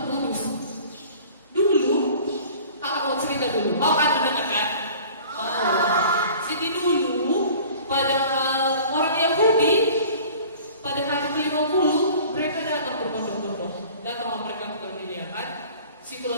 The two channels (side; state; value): both; inverted; correlation -0.46